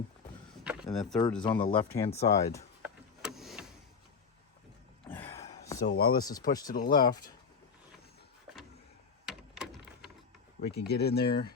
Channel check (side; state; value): right; quieter; 5.6 dB